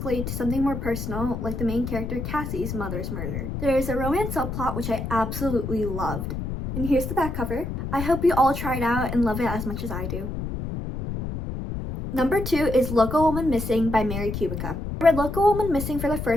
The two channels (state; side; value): noise; left; rumble, 5 dB below the sound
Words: to something more personal, like the main character Cassie's mother's murder. There is a romance subplot which I absolutely loved. And here's the back cover. I hope you all try it out and love it as much as I do. Number 2 is Local Woman Missing by Mary Kubica. I read Local Woman Missing for the